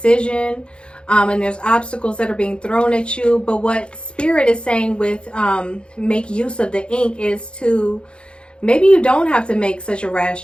and there's obstacles that are being thrown at you. But what Spirit is saying with make use of the ink is to, maybe you don't have to make such a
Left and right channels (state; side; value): late; right; 0.055 ms